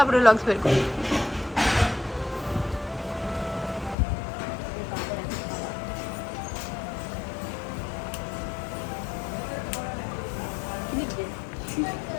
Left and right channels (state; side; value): drops out; right; at 4.0 s